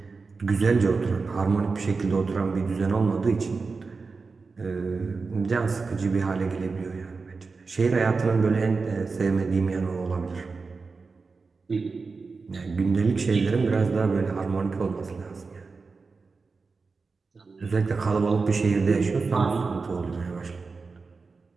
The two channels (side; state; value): left; quieter; 4.4 dB